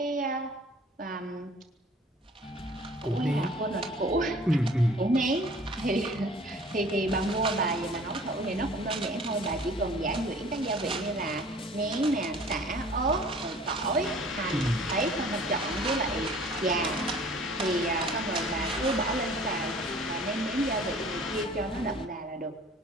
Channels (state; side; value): normal; both; correlation 0.49